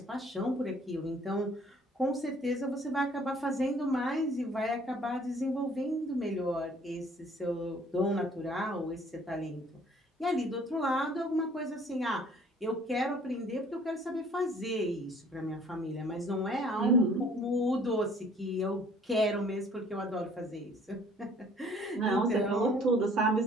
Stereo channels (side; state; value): both; normal; correlation 0.57